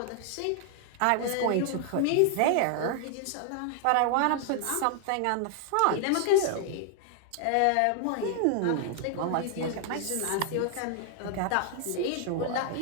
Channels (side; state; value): both; different; correlation 0.00